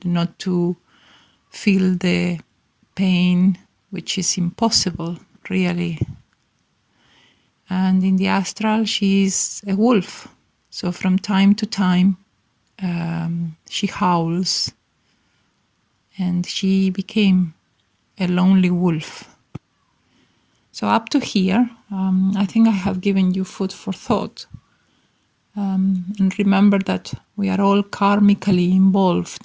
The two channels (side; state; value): both; identical; correlation 1.00